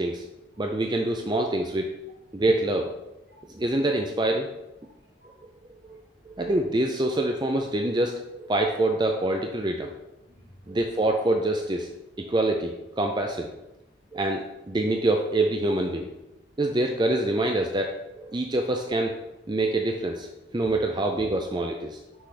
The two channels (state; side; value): normal; both; correlation 0.64